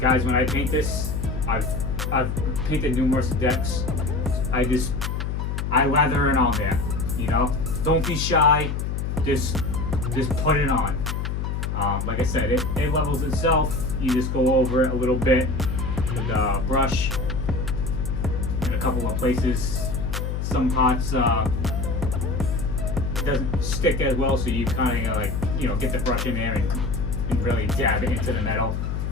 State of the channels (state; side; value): noise; left; hum, 2 dB below the sound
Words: guys, when I paint this, I've painted numerous decks. I lather it on there, you know. Don't be shy. Just put it on. Like I said, it levels itself. You just go over it a little bit with a brush in a couple of places. Some parts it doesn't stick as well, so you kind of like, you know, get the brush in there and really dab it into the metal.